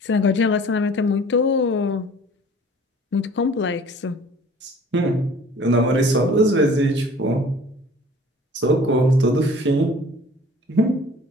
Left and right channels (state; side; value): normal; both; correlation 0.49